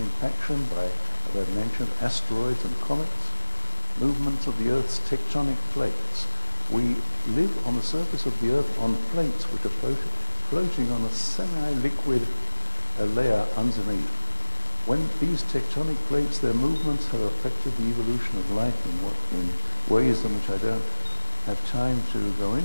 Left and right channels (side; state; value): both; inverted; correlation -1.00